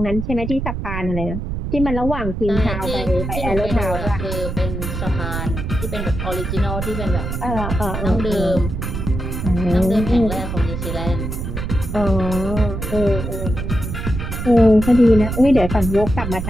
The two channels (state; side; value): noise; right; rumble, 4 dB below the sound